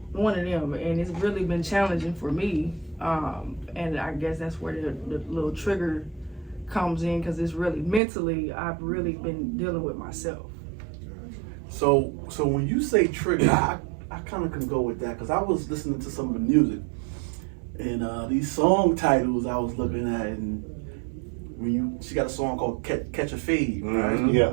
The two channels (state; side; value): drops out; left; at 8.0 s